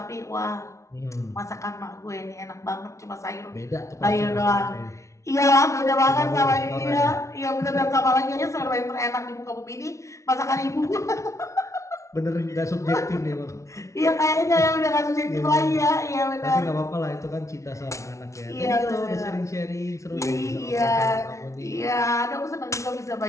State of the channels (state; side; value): late; right; 0.14 ms